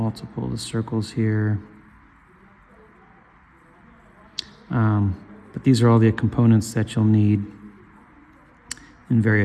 the circles here. But these are all the components that you'll need in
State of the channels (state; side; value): identical; both; correlation 1.00